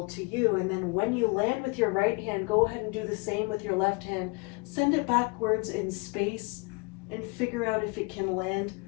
to you, and then when you land with your right hand, go ahead and do the same with your left hand. Send it backwards in space and figure out if it can land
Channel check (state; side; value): quieter; right; 29.7 dB